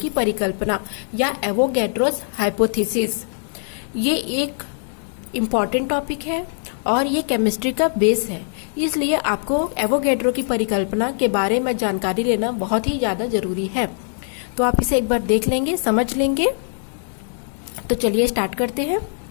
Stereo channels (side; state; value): right; silent; digital silence